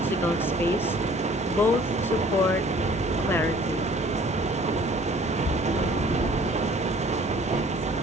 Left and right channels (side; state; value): both; normal; correlation 0.53